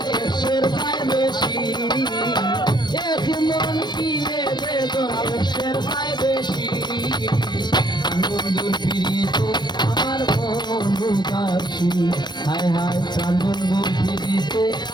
হায় হায় প্রাণ বন্ধু ফিরিতে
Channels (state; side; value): late; right; 0.21 ms